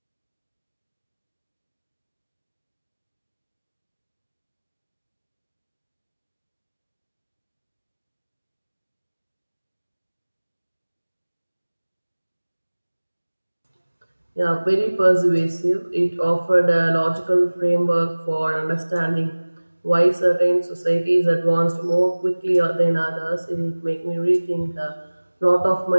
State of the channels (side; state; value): both; inverted; correlation -1.00